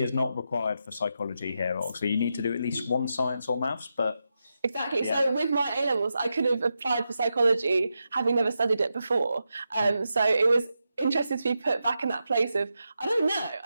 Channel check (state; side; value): inverted; both; correlation -0.87